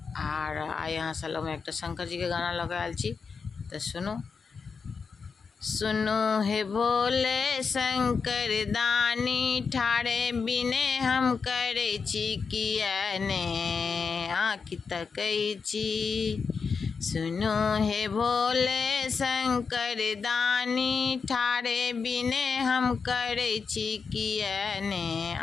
आइ अहाँ सब लग में एक शंकर जी के गाना लगा आयल छी तो सुनो। सुनो हे भोले शंकर दानी ठाड़े बिने हम करे छी किया ने आँखि तकै छी। सुनो हे भोले शंकर दानी ठाड़े बिने हम करे छी किया ने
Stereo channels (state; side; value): quieter; right; 5.4 dB